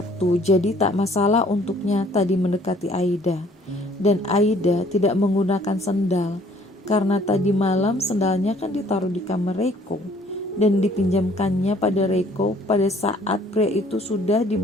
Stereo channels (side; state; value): both; normal; correlation 0.59